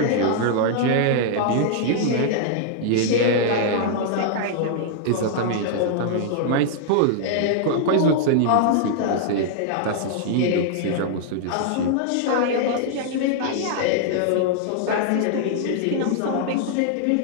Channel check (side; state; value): both; different; correlation -0.01